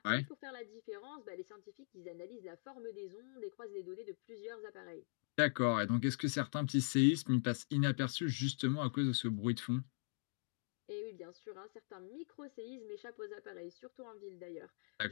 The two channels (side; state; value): right; silent; digital silence